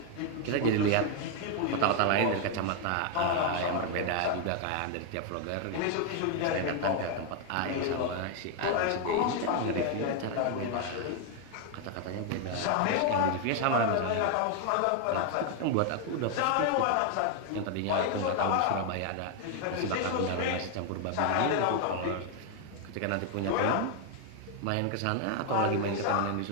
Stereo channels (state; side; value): different; both; correlation 0.00